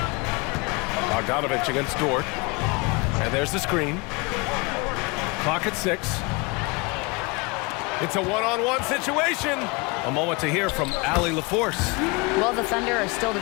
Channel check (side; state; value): right; quieter; 27.5 dB